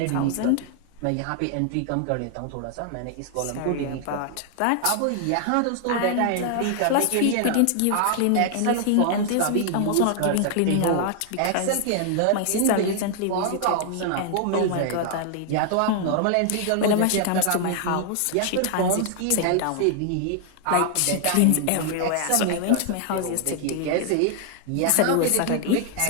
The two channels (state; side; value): different; both; correlation 0.00